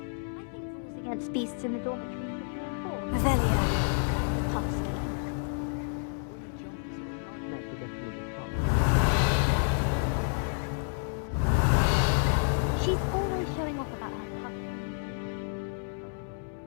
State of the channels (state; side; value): silent; right; 58 dB below the other